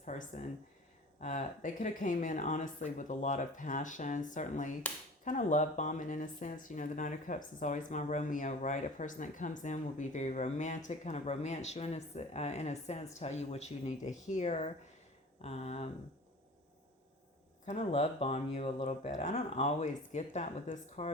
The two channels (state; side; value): normal; both; correlation 0.41